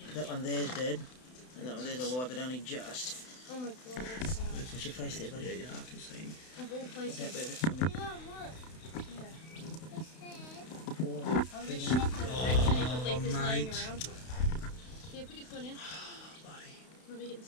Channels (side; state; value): right; late; 32 ms